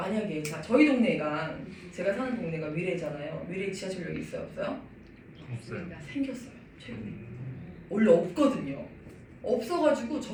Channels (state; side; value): identical; both; correlation 1.00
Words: 저희 동네가 제가 사는 동네가 위례잖아요. 위례 지하철역이 있어요, 없어요? 없어요. 생겼어요. 최근에. 원래 없거든요. 없어가지고